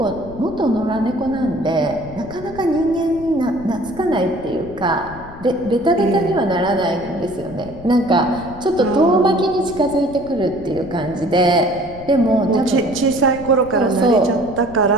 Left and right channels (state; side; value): noise; left; rumble, 16 dB below the sound